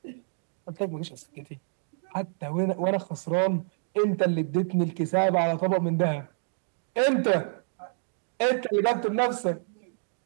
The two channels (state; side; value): silent; left; digital silence